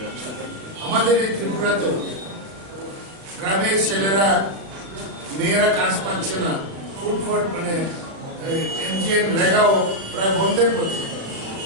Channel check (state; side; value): late; left; 36 ms